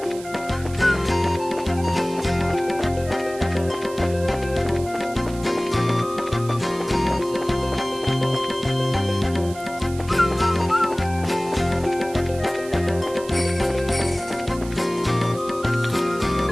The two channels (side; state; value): right; noise; hiss, 17 dB below the sound